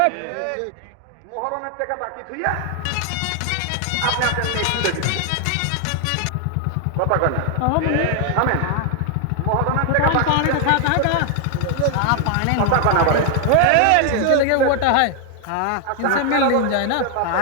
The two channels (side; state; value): both; different; correlation 0.00